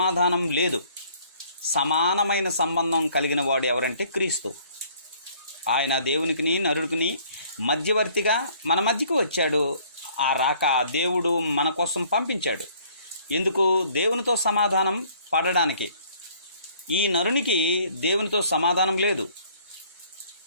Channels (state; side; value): inverted; both; correlation -0.59